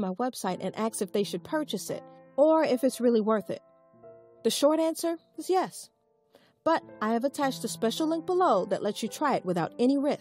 website and asked if they should purchase it or if it's really worth it. The short answer is yes. But I have attached a special link below that lets you try it without any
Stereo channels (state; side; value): identical; both; correlation 1.00